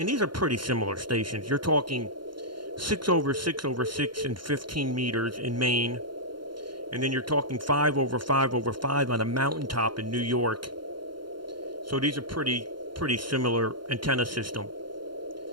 these are pretty similar stations. You're talking 6 over 6 over 6 and 15 meters in Maine. And then you're talking 5 over 5 over 5 on a mountaintop in New York. So these are pretty similar antenna system.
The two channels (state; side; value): late; left; 0.72 ms